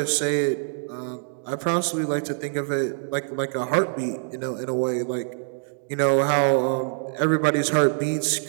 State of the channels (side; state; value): left; silent; digital silence